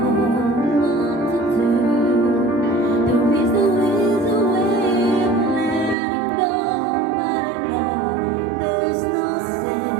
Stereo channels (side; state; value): left; drops out; at 6.0 s